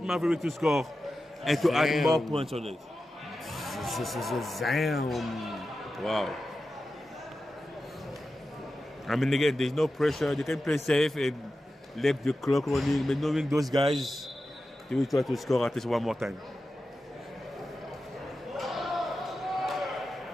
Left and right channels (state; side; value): normal; both; correlation 0.92